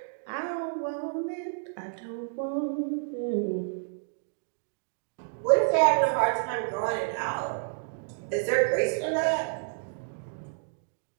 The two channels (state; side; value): silent; left; digital silence